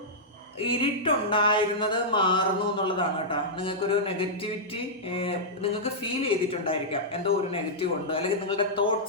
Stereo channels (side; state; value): both; normal; correlation -0.10